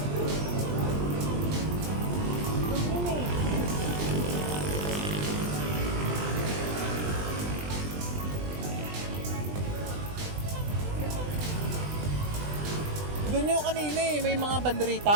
Dumi eh. Doon yung kanina eh, may mga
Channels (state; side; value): late; left; 20 ms